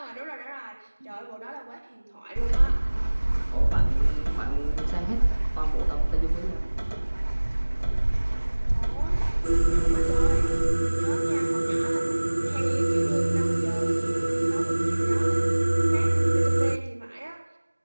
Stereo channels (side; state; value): both; inverted; correlation -1.00